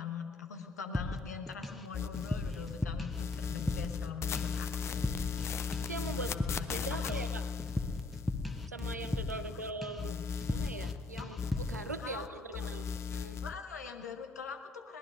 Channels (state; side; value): quieter; right; 3.5 dB